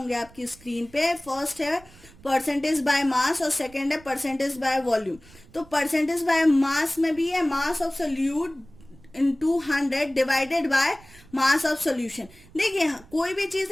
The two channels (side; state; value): right; noise; rumble, 24 dB below the sound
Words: आपकी स्क्रीन पे। फर्स्ट है परसेंटेज बाय मास और सेकेंड है परसेंटेज बाय वॉल्यूम। तो परसेंटेज बाय मास में भी है मास of solute into 100 divided by mass of solution. देखिए कोई भी चीज